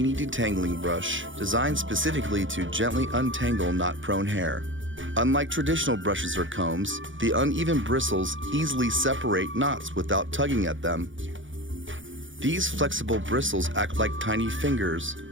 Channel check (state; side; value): late; left; 0.56 ms